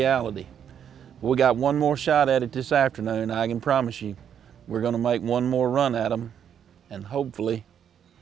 We got one more shot at it this afternoon. I can promise you, we're gonna make one more run at them, and hopefully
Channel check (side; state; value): left; quieter; 8.7 dB